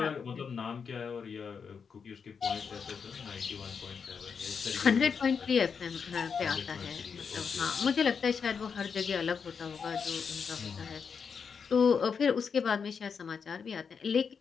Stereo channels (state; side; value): quieter; right; 6.1 dB